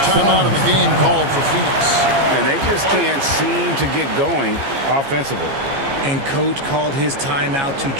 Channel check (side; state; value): left; late; 15 ms